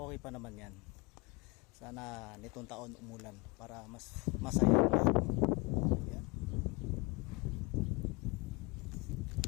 pa naman yan. Sana nitong taon umulan para mas masaya ang lahat. Yan.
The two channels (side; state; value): right; quieter; 27.5 dB